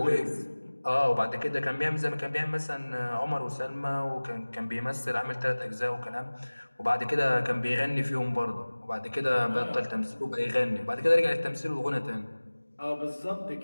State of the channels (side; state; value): both; inverted; correlation -1.00